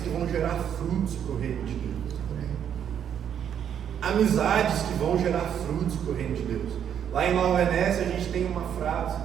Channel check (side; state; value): left; quieter; 8.9 dB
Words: que vão gerar frutos para o reino de Deus. Amizades que vão gerar frutos para o reino de Deus. Lá em Nova Venécia a gente tem uma frase